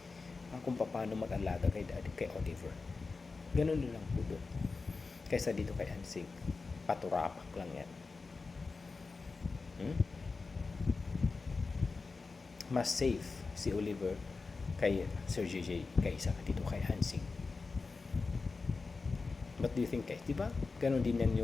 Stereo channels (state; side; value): quieter; right; 4.2 dB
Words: kung paano mag-alaga kay Oliver. Ganun lang po doon. Kaysa dito kay Ansing, paturapak lang yan. Mas safe si Oliver kay Sir JJ kaysa dito kay Ansing. What do you think guys? Diba? Ganon din yan